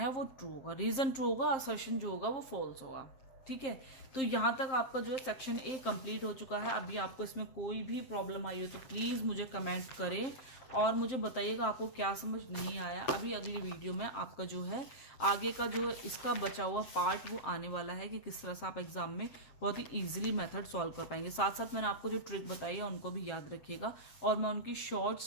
वो ट्रू होगा, रीजन ट्रू होगा, असर्शन जो होगा वो फॉल्स होगा, ठीक है। तो यहाँ तक आपका जो है सेक्शन ए कंप्लीट हो चुका है। अभी आपको इसमें कोई भी प्रॉब्लम आई हो तो प्लीज़ मुझे कमेंट करें और मुझे बताइएगा आपको क्या समझ नहीं आया। अभी अगली वीडियो में आपका जो है आगे का जो इसका बचा हुआ पार्ट वो आने वाला है कि किस तरह से आप एग्जाम में बहुत ही ईजिली मेथड सॉल्व कर पाएंगे। साथ साथ मैंने आपको जो ट्रिक बताई है उनको भी याद रखिएगा और मैं उनकी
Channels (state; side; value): late; right; 7.5 ms